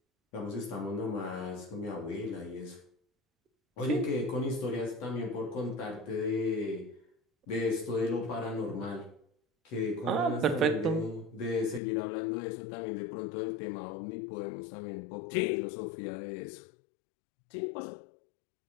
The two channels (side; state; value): right; drops out; at 11.8 s